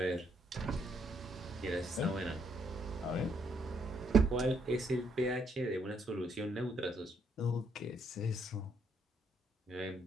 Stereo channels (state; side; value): normal; both; correlation 0.72